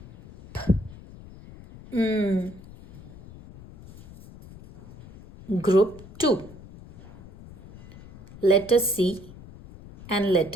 M. Group 2. Letter C and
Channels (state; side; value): noise; left; rumble, 19 dB below the sound